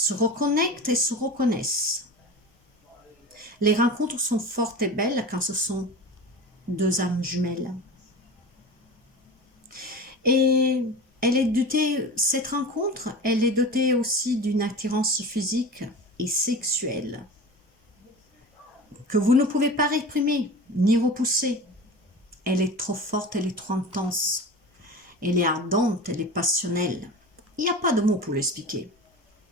et se reconnaissent. Les rencontres sont fortes et belles quand ce sont deux âmes jumelles. Et cette rencontre, elle est dotée aussi d'une attirance physique et sexuelle que vous ne pouvez pas réprimer ni repousser. Elle est trop forte, elle est trop intense, elle est ardente, elle est passionnelle. Il n'y a pas de mots pour l'expliquer.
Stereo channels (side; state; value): both; normal; correlation 0.32